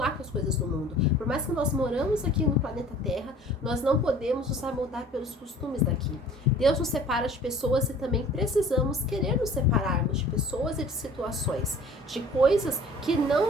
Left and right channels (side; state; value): both; normal; correlation 0.48